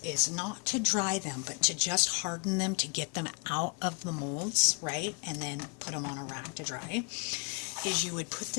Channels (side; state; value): right; quieter; 36.5 dB